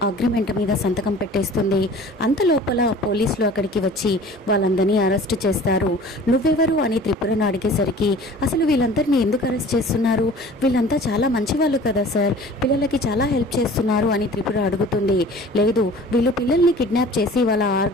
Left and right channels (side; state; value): both; normal; correlation 0.45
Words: అగ్రిమెంట్ మీద సంతకం పెట్టేస్తుంది. అంతలోపల పోలీసులు అక్కడికి వచ్చి వాళ్ళందరినీ అరెస్ట్ చేస్తారు. నువ్వెవరు అని త్రిపురను అడిగేసరికి అసలు వీళ్ళందరినీ ఎందుకు అరెస్ట్ చేస్తున్నారు, వీళ్ళంతా చాలా మంచి వాళ్ళు కదా సార్, పిల్లలకి చాలా హెల్ప్ చేస్తున్నారు అని త్రిపుర అడుగుతుంది. లేదు, వీళ్ళు పిల్లల్ని కిడ్నాప్ చేసి వాళ్ళ